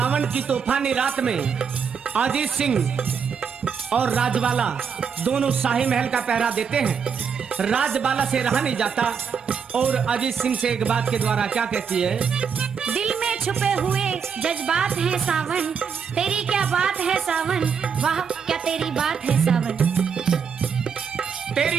की तूफानी रात में अजीत सिंह और राजबाला दोनों शाही महल का पहरा देते हैं। राजबाला से रहा नहीं जाता और अजीत सिंह से एक बात के द्वारा क्या कहती है? दिल में छुपे हुए जज्बात है सावन, तेरी क्या बात है सावन, वाह क्या तेरी बात है सावन।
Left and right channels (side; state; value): left; quieter; 6.6 dB